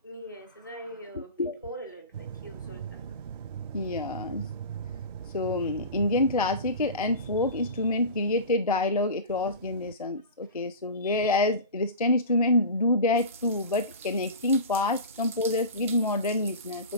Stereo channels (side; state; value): both; inverted; correlation -0.30